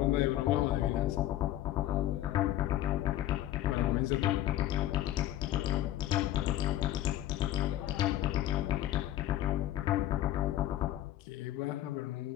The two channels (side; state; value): right; quieter; 13.0 dB